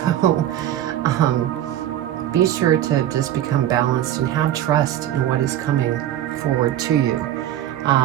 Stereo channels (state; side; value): quieter; left; 12.1 dB